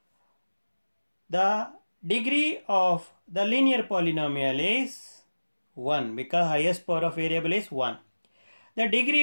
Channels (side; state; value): both; inverted; correlation -1.00